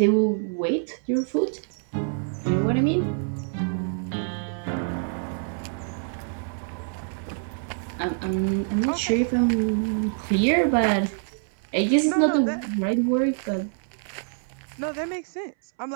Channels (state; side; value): silent; left; 61 dB below the other